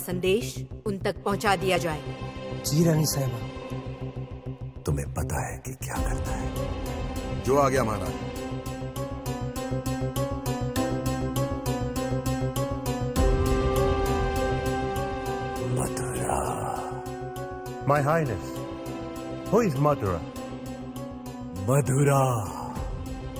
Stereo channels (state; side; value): identical; both; correlation 1.00